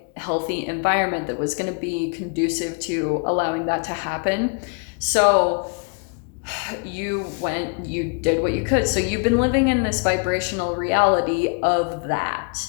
healthy environment that was going to be conducive to allowing that to happen. So you did what you could. So you've been living in this vibrational reality of that.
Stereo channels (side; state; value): right; quieter; 36.7 dB